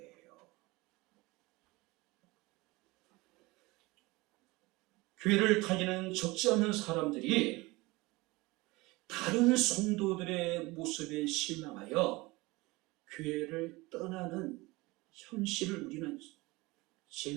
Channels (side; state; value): left; quieter; 22.3 dB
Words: 교회를 다니는 적지 않은 사람들이 다른 성도들의 모습에 실망하여 교회를 떠나는 현실을 우리는